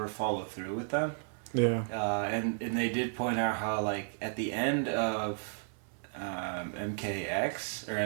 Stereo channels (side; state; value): left; silent; 55 dB below the other